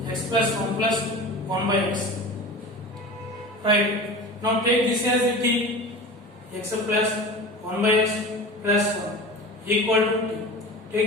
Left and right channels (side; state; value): both; normal; correlation 0.33